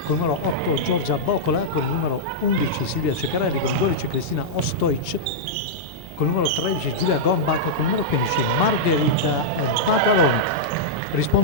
con il numero 8 Giorgia Bocola, con il numero 11 Silvia Ceccarelli, con il 12 Cristina Ostoic, con il numero 13 Giulia Gombach, con il numero 15 Margherita Mataloni.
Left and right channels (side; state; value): both; normal; correlation -0.07